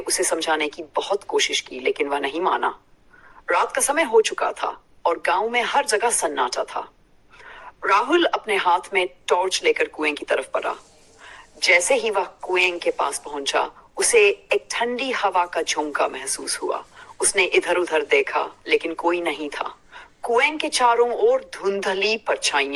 समझाने की बहुत कोशिश की, लेकिन वह नहीं माना। रात का समय हो चुका था और गांव में हर जगह सन्नाटा था। राहुल अपने हाथ में टॉर्च लेकर कुएं की तरफ बढ़ा। जैसे ही वह कुएं के पास पहुंचा, उसे एक ठंडी हवा का झोंका महसूस हुआ। उसने इधर उधर देखा, लेकिन कोई नहीं था। कुएं के चारों ओर धुंधली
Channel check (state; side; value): identical; both; correlation 1.00